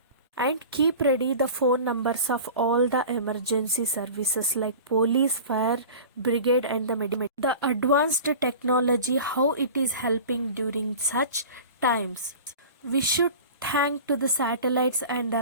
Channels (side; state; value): both; inverted; correlation -0.37